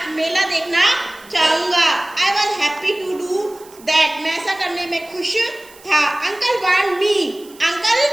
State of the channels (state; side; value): noise; right; hiss, 23 dB below the sound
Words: मेला देखना चाहूंगा. I was happy to do that. मैं ऐसा करने में खुश था. Uncle want me.